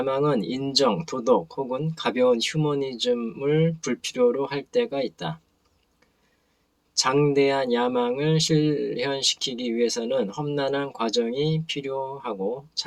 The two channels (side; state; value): both; identical; correlation 1.00